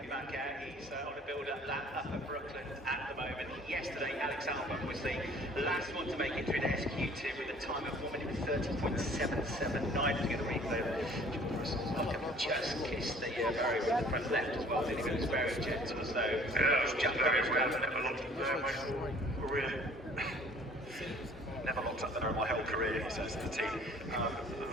yesterday. Alex Albon was the last one to make it through the SQ2 with a time of 1:30.779. To get a replay. Just kissed the barrier with the front left as well. Didn't he? It was very gentle, so it was just very well. Never locked up there in my whole career, he says to the team.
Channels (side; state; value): both; normal; correlation 0.53